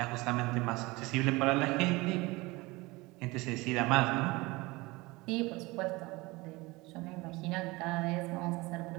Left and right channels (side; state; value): left; quieter; 22.7 dB